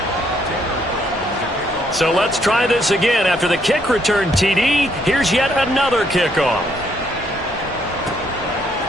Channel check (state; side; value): normal; both; correlation 0.71